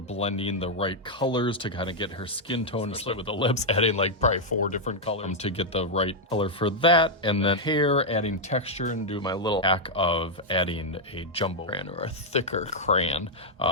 the right colors to kind of get her skin tone, especially with the lips, adding like probably 4 different colors to get the right color for that. And then hair, adding texture, and do my little hack of adding a jumbo crayon or a thicker crayon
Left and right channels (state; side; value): normal; both; correlation -0.02